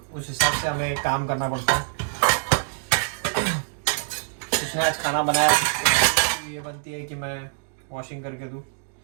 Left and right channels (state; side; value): silent; left; digital silence